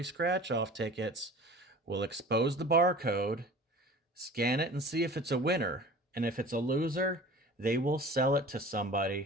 scratch off tickets will expose the barcode, scan it and see if it's a winner. And if it's a loser, they will sell it to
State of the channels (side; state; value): both; normal; correlation 0.42